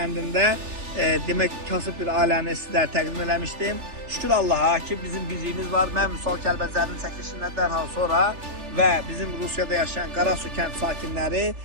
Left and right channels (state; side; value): late; left; 3.4 ms